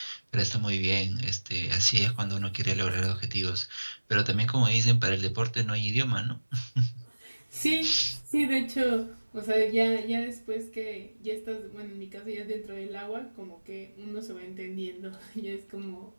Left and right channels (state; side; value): inverted; both; correlation -1.00